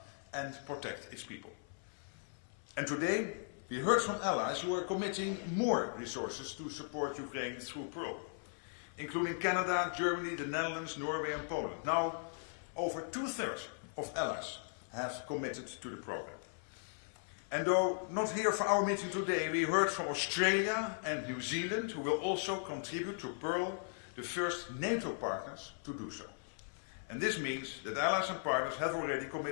and protect its people. And today, we heard from allies who are committing more resources to support Ukraine through Pearl, including Canada, Germany, the Netherlands, Norway, and Poland. Now, over 2/3 of allies have committed to the program. And though not here for our meeting today, we heard from Australia and New Zealand, who will also contribute to Pearl, the first NATO partners to do so. And this means that allies and partners have already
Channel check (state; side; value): silent; right; 52 dB below the other